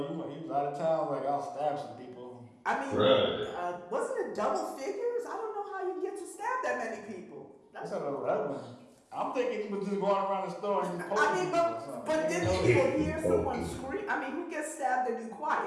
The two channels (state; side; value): identical; both; correlation 1.00